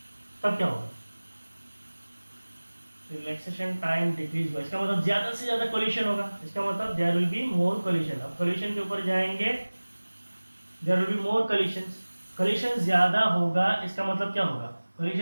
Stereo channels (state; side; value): inverted; both; correlation -1.00